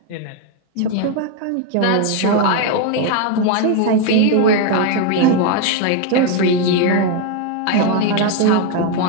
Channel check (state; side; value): different; both; correlation 0.01